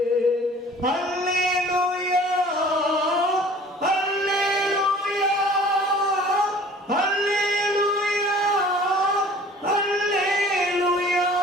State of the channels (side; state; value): both; normal; correlation 0.48